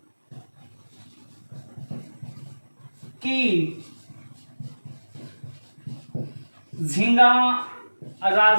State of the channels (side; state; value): both; inverted; correlation -1.00